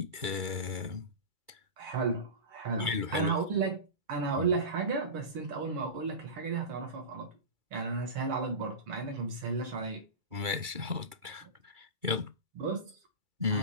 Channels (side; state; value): left; late; 2.3 ms